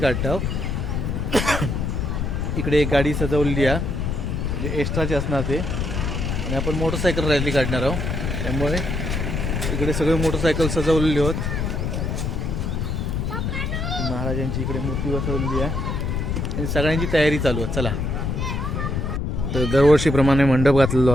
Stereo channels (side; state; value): left; noise; rumble, 1 dB below the sound